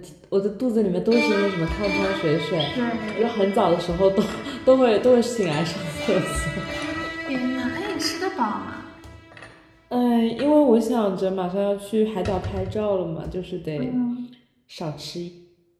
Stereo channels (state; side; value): identical; both; correlation 1.00